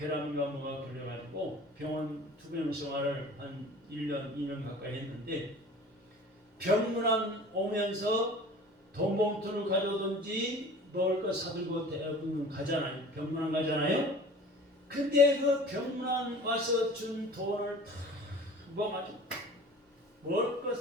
뭐가 걸려가지고 병원 투병 생활을 한 1년, 2년 가까이 했는데 병문안 오면서 돈 봉투를 가져오든지 먹을 거 사들고 대부분 가잖아요. 병문안 가잖아요. 근데 그 병문안 와서 준 돈을 다 모아가지고 먹을 거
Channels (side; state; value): both; normal; correlation 0.43